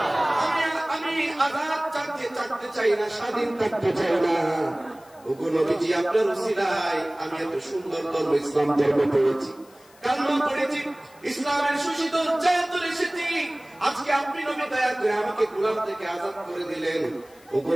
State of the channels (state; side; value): noise; left; hiss, 27 dB below the sound